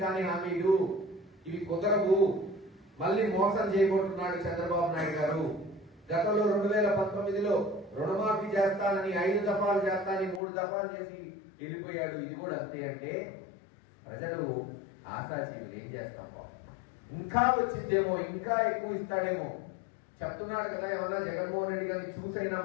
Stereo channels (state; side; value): drops out; right; at 10.4 s